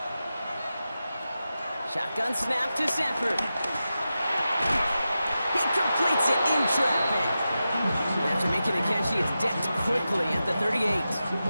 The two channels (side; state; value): both; inverted; correlation -0.92